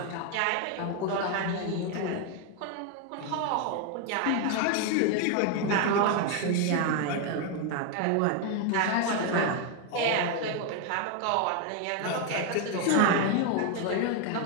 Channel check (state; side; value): different; both; correlation 0.01